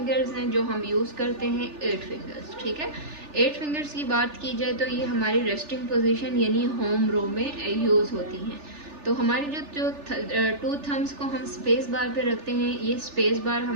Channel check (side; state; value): left; late; 3.4 ms